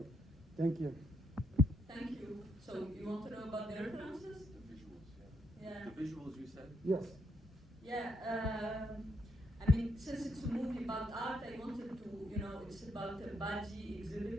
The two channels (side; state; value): both; normal; correlation 0.76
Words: Thank you. Thank you. So you want to know about the references? The visuals, Yeah. The visuals you said? Yes. Yeah. Since it's a movie about art, I wanted to, it's about a Baji